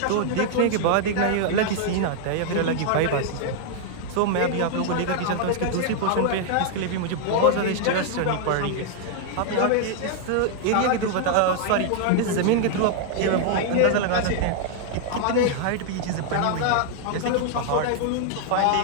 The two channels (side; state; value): both; different; correlation 0.00